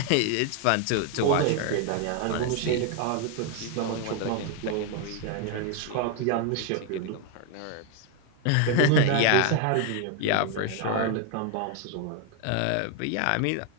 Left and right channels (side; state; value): both; different; correlation 0.01